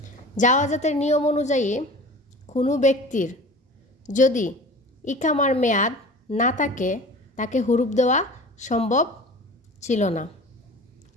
জাওয়াজাতের নিয়ম অনুযায়ী কোনো ব্যক্তির যদি ইকামার মেয়াদ না থাকে তাকে হুরুপ দেওয়া সম্ভব ছিল না।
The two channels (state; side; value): normal; both; correlation 0.39